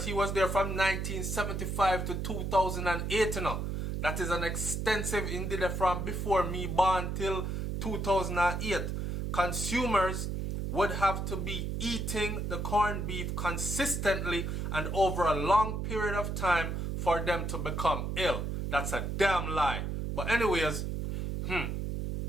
he was there from 1975 to 2008, you know. That is an extensive, indeed from before me born till 2008. Consumers would have to be eating the corned beef consistently and over a long period of time for them to become ill. That's a damn lie. But anyways,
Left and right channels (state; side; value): noise; right; hum, 2 dB below the sound